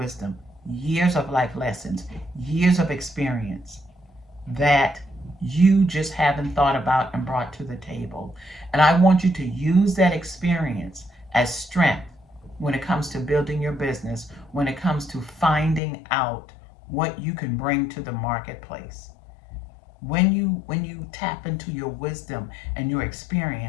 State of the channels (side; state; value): right; drops out; at 15.8 s